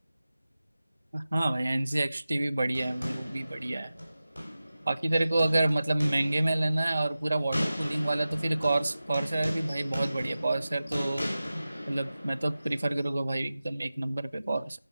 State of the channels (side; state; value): both; inverted; correlation -0.95